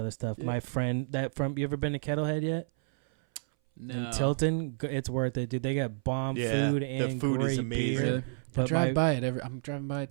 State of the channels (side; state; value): left; silent; 58 dB below the other